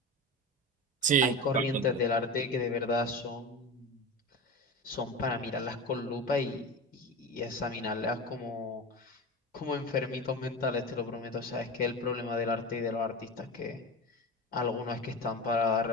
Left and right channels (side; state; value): both; normal; correlation 0.27